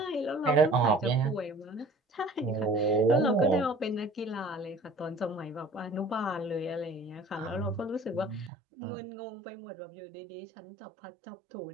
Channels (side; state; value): left; drops out; at 8.5 s